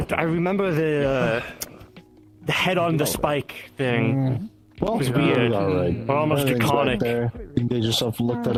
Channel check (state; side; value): identical; both; correlation 1.00